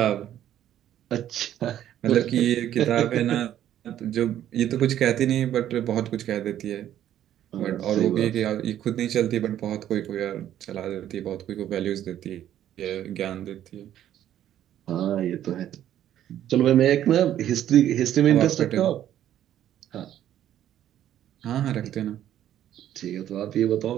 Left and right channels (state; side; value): quieter; left; 11.4 dB